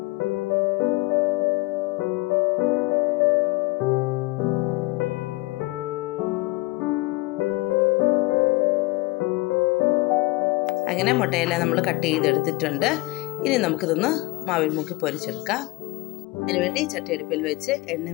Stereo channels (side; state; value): right; quieter; 22.5 dB